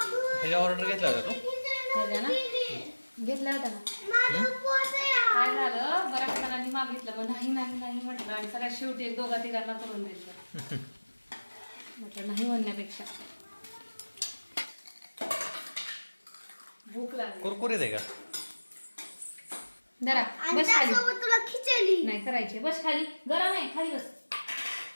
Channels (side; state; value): both; inverted; correlation -1.00